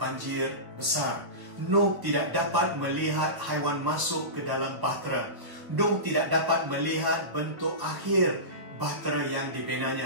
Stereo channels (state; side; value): late; left; 1.3 ms